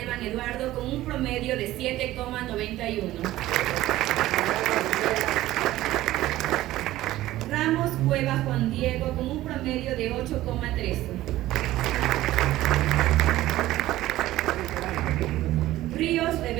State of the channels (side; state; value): left; quieter; 15.6 dB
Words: Eduardo con un promedio de 7,91. Ramos Cueva Juan Diego con un promedio de 8,13. Ríos